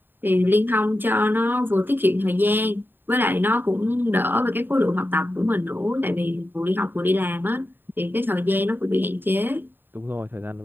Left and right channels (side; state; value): left; late; 0.094 ms